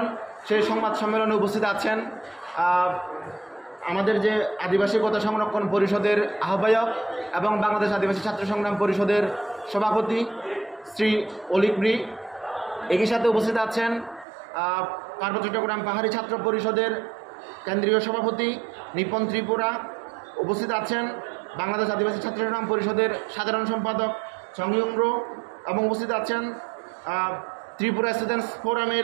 সেই সংবাদ সম্মেলনে উপস্থিত আছেন আমাদের যে আদিবাসী কোটা সংরক্ষণ পরিষদের আহ্বায়ক এবং বাংলাদেশ আদিবাসী ছাত্র সংগ্রাম পরিষদের সভাপতি শ্রী অলিক মৃ। একই সাথে উপস্থিত আছেন পার্বত্য চট্টগ্রাম পাহাড়ি ছাত্র পরিষদের কেন্দ্রীয় সভাপতি নিপন ত্রিপুরা। উপস্থিত আছেন বাংলাদেশ আদিবাসী ছাত্র সংগ্রাম পরিষদের সাধারণ সম্পাদক সংয়ুংর এবং উপস্থিত আছেন ত্রিপুরা স্টুডেন্টস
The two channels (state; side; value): drops out; left; at 14.2 s